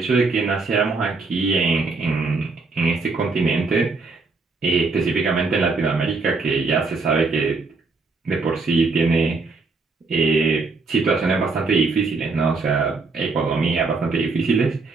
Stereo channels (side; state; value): left; quieter; 4.0 dB